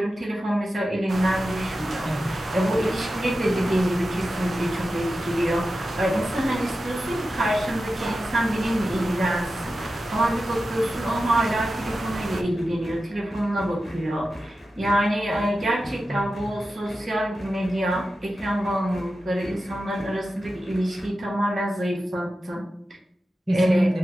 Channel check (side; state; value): both; normal; correlation 0.92